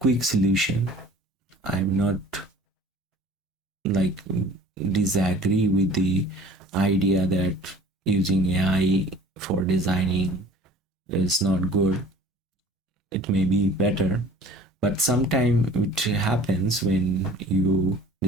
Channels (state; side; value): normal; both; correlation 0.47